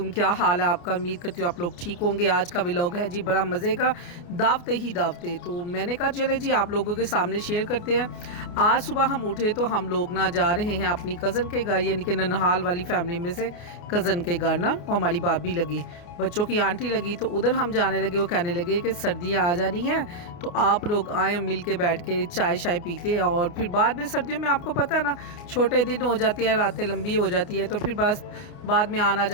क्या हाल है आपका? उम्मीद करती हूँ आप लोग ठीक होंगे। आज का व्लॉग है जी बड़ा मज़े का, दावते ही दावते। तो मैंने कहा चले जी आप लोगों के सामने शेयर करते हैं। आज सुबह हम उठे तो हम लोग ना जा रहे हैं अपनी कज़न के घर, यानी कि ननहाल वाली फैमिली में से कज़न के घर ना, और हमारी भाभी लगी, बच्चों की आंटी लगी, तो उधर हम जाने लगे। वो कहने लगे कि सर्दियाँ आ जानी हैं तो आप लोग आए, मिल के बैठ के चाय शाय पीते हैं। और फिर बाद में सर्दियों में आपको पता है ना, छोटे दिन हो जाती हैं, रातें लंबी हो जाती है, तो फिर बस बाद में आना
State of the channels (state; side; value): late; right; 29 ms